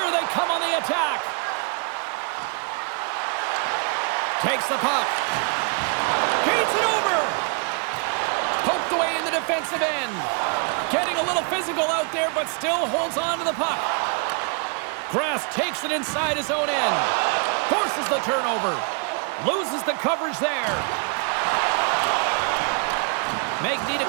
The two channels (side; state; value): left; quieter; 38.4 dB